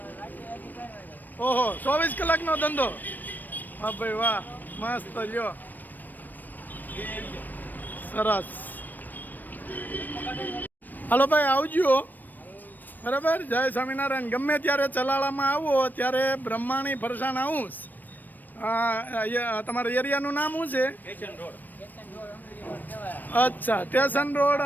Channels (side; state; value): right; late; 0.088 ms